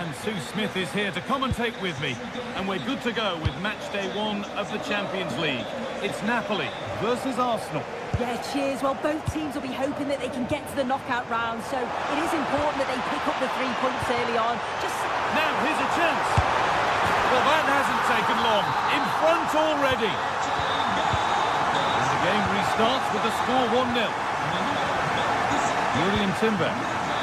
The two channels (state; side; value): identical; both; correlation 1.00